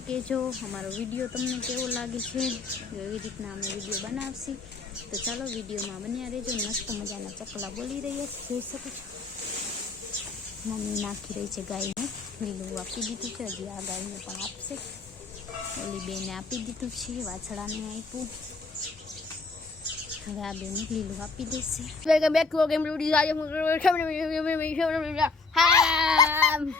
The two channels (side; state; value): right; quieter; 4.1 dB